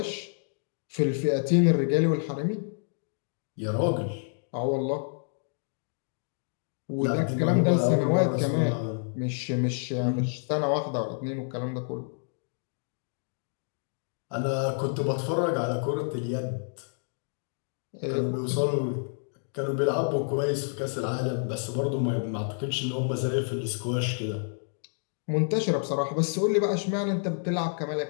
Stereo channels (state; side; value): silent; right; digital silence